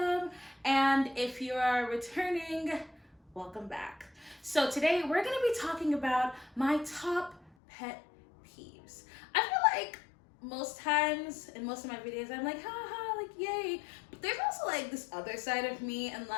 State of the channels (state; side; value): drops out; right; at 7.5 s